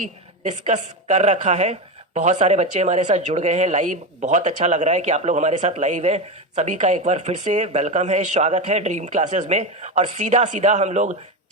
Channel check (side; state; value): both; normal; correlation 0.16